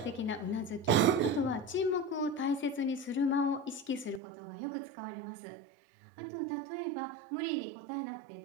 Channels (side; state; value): left; drops out; at 4.2 s